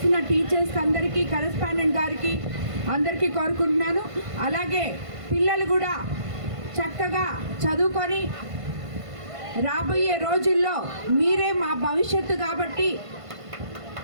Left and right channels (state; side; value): late; left; 1.5 ms